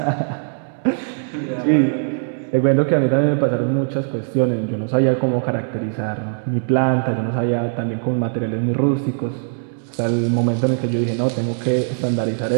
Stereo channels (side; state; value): left; silent; digital silence